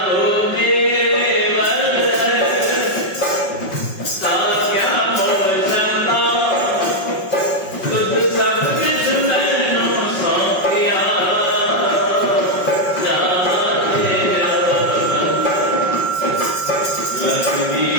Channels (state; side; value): late; right; 5.4 ms